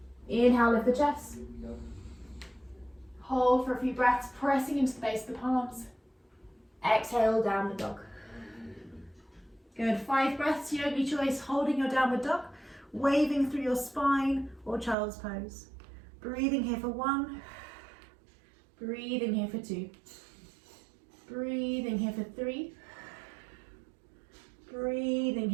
Inhale, lift the chest. Hold for a few breaths, pressing into the base of the palms. Exhale, downward dog. Good, 5 breaths, yogi choice, holding your downward dog, waving through your spine or child's pose. Breathing here for 1. Breathing here for 2. Breathing here for 3. Breathing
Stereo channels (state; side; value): drops out; left; at 15.0 s